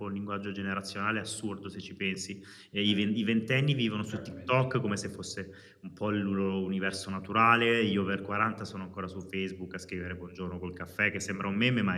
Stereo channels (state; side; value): identical; both; correlation 1.00